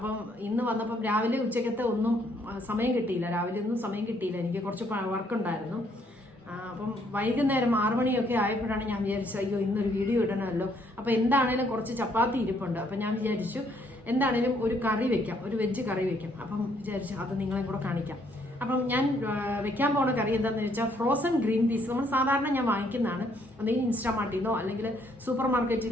ഇന്ന് വന്നപ്പം രാവിലെ ഉച്ചക്കത്തെ ഒന്നും സമയം കിട്ടിയില്ല. എനിക്ക് കുറച്ച് വർക്ക് ഉണ്ടായിരുന്നു. അപ്പം വൈകുന്നേരം 6 മണിയൊക്കെ ആയപ്പോഴാണ് ഞാൻ വിചാരിച്ചത്, അയ്യോ ഇന്നൊരു വീഡിയോ ഇടണമല്ലോ. അപ്പം എന്താണേലും കുറച്ച് ചപ്പാത്തി ഇരിപ്പുണ്ട്. അപ്പം ഞാൻ വിചാരിച്ചു എന്താണേലും ഒരു കറി വെക്കാം, ഒരു വെജ് കറി വെക്കാം. അപ്പം വിചാരിച്ചു അത് നിങ്ങളെ കൂടെ കാണിക്കാം. അപ്പം ഞാൻ വെക്കാൻ പോണ കറി എന്താണെന്ന് വെച്ചാൽ ഫ്രോസൺ ഗ്രീൻ പീസ്. നമ്മൾ സാധാരണ ഞാൻ വാങ്ങിക്കുന്നതാണ്, ഒന്നെങ്കിൽ ഇൻസ്റ്റാമാർട്ടിലോ അല്ലെങ്കിൽ സൂപ്പർ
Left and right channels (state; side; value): normal; both; correlation 0.68